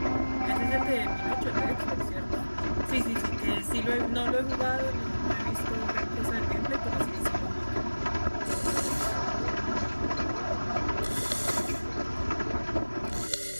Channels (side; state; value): both; inverted; correlation -1.00